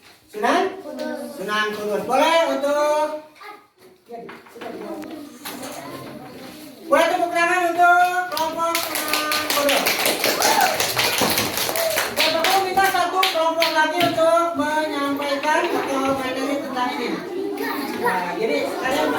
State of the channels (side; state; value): both; identical; correlation 1.00